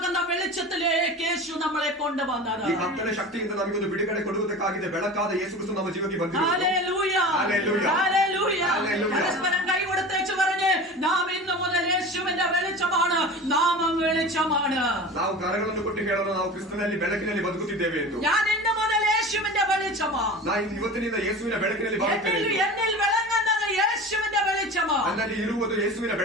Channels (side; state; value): both; normal; correlation 0.34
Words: വെളിച്ചത്തിലേക്ക് യേശു നമ്മളെ കൊണ്ടുവന്നത്. ಈ ಕತ್ತಲೆ ಶಕ್ತಿಯಿಂದ ನಮಗೊಂದು ಬಿಡುಗಡೆ ಕೊಡುವುದಕ್ಕಾಗಿದೆ ಬೆಳಕಾದ ಯೇಸು ಕ್ರಿಸ್ತು ನಮ್ಮ ಜೀವಕ್ಕೆ ಬಂದಿದ್ದಾನೆ. Hallelujah, hallelujah, hallelujah. ഹല്ലേലൂയ. പരസ്പരം കൈ കൊടുത്തേച്ച് പറഞ്ഞ്, നാം ഇന്നു മുതൽ യേശുവിന്റെ വെളിച്ചമാണ്, നാമം വെളിച്ചമാണ്. ನಾವು ಕರಗಳನ್ನು ಕೊಟ್ಟು ಹೇಳೋಣ, ನಾವು ಕ್ರಿಸ್ತನಲ್ಲಿ ಬೆಳಕಿನಲ್ಲಿ ಬದುಕುತ್ತಿದ್ದೇವೆ ಎಂದು. ഞാൻ ഇന്നു മുതൽ യേശുവിന്റെ വെളിച്ചമാണ്. ನಾನು ಇವತ್ತಿನಿಂದ ಯೇಸುವಿನ ಬೆಳಕಿನಲ್ಲಿ ಬದುಕುತ್ತೇನೆ. എന്നിൽ വിളങ്ങുന്നത് യേശുവിന്റെ വെളിച്ചമാണ്. ನನ್ನಲ್ಲಿ ಇರುವುದು ಯೇಸುವಿನ